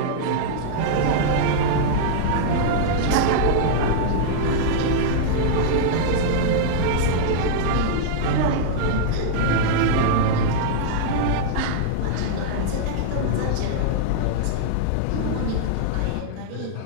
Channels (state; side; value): different; both; correlation -0.02